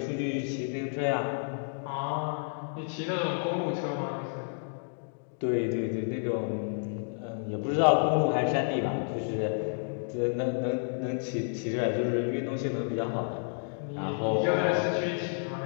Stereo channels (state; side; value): silent; right; digital silence